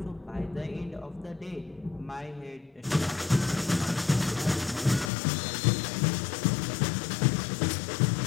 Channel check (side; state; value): right; drops out; at 5.1 s